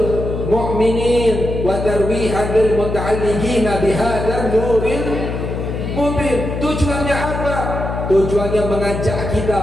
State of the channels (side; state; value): left; noise; hum, 4 dB below the sound